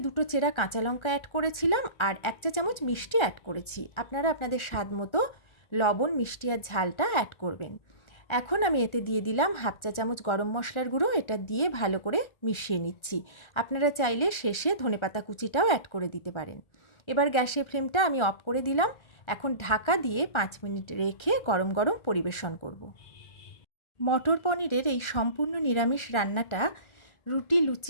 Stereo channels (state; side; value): late; right; 1.4 ms